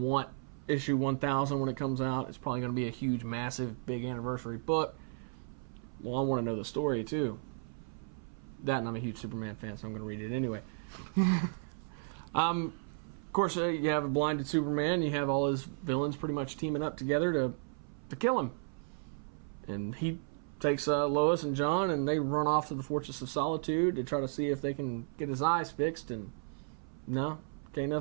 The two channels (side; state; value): left; silent; 55 dB below the other